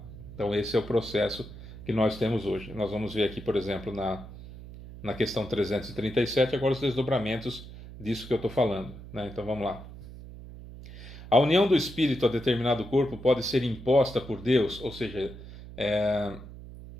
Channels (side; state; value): right; noise; hum, 14 dB below the sound